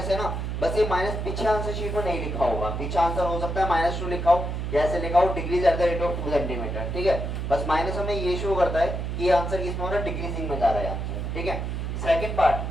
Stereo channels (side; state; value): right; noise; hum, 3 dB below the sound